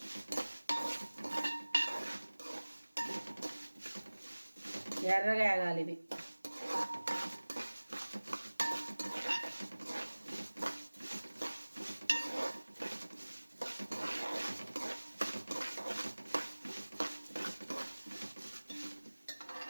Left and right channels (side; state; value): both; inverted; correlation -1.00